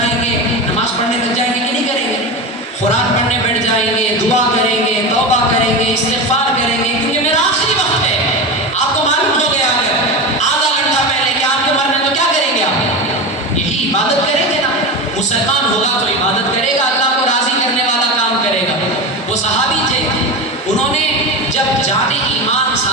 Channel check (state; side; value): normal; both; correlation 0.22